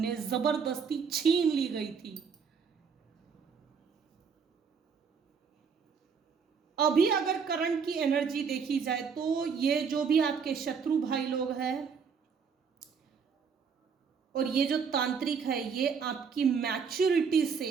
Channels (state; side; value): quieter; left; 6.1 dB